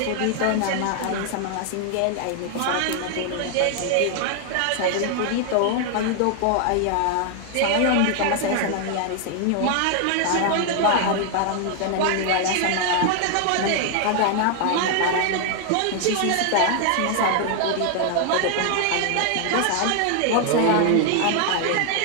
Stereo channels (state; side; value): different; both; correlation 0.00